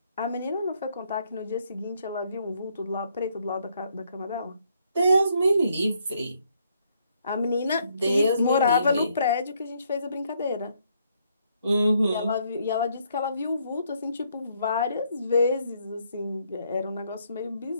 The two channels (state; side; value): inverted; both; correlation -0.71